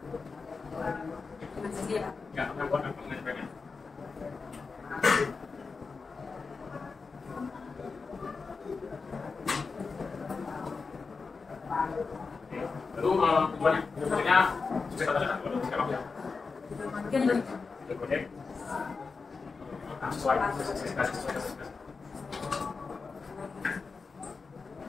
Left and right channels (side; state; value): right; quieter; 4.6 dB